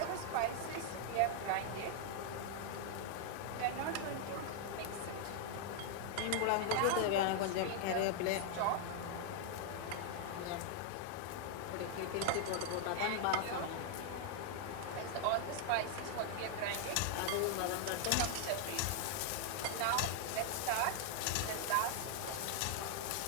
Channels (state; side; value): different; both; correlation 0.00